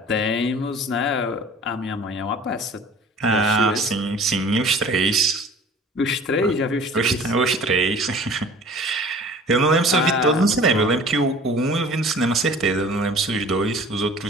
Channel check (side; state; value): both; normal; correlation 0.46